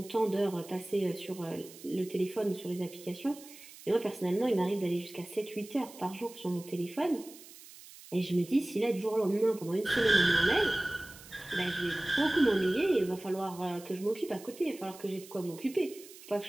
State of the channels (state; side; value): noise; right; hiss, 18 dB below the sound